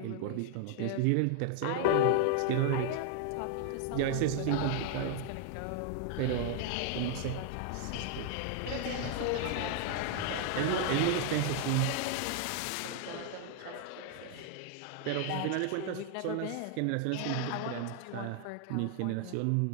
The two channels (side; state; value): both; different; correlation 0.00